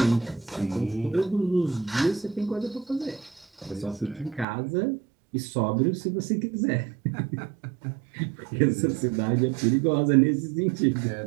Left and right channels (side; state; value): left; drops out; at 4.5 s